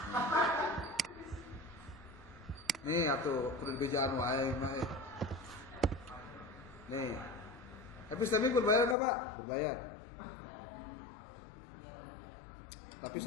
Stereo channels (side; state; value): right; drops out; at 9.0 s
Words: Nih atuh kudu dibejaan wae mah. Nih. Epistemic berbayar enggak, Pak? Berbayar. Tapi